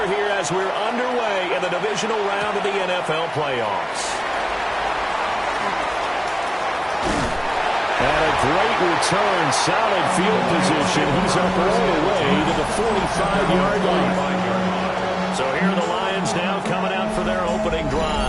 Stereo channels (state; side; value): identical; both; correlation 1.00